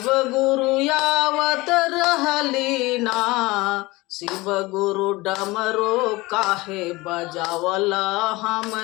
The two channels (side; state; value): right; quieter; 21.6 dB